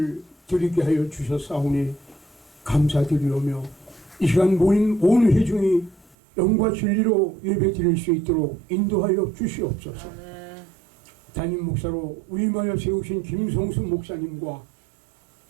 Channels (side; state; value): left; drops out; at 6.2 s